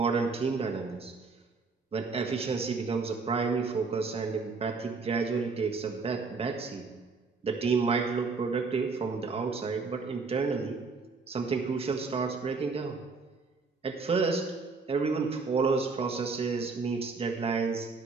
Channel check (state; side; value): quieter; left; 4.4 dB